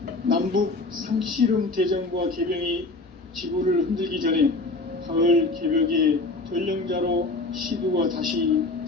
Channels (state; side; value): quieter; right; 3.2 dB